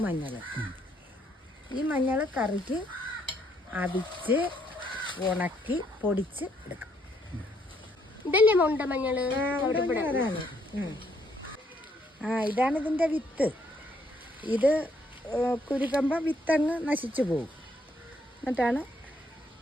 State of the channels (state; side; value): normal; both; correlation 0.70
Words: മഞ്ഞൾ. ഈ മഞ്ഞൾ കറിക്ക് അടിച്ച് ഉണക്കി പൊടിച്ച് എടുക്കും. ഇതല്ലേ ഉണ്ട മഞ്ഞൾ? ഇതാണ് ഇതിൻ്റെ വിത്ത്. ഇത് കുരുക്കുമ്പോൾ വിത്തങ്ങ് നശിച്ചു പോകും. എന്നിട്ടാണ്